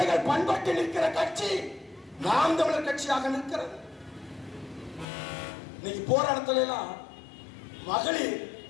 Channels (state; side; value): drops out; right; at 5.1 s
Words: பண்பட்டு நிற்கிற கட்சி நாம் தமிழர் கட்சியாக நிற்கிறது. இன்னைக்கு போராட்டத்துல எல்லாம் மகளிர்